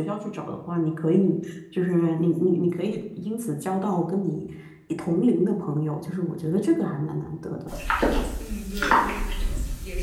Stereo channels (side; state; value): both; identical; correlation 1.00